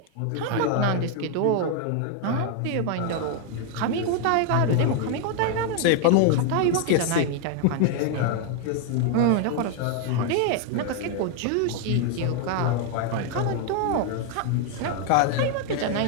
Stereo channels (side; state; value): both; different; correlation 0.01